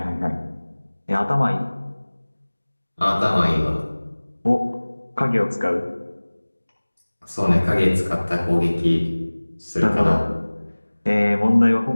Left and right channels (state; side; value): inverted; both; correlation -1.00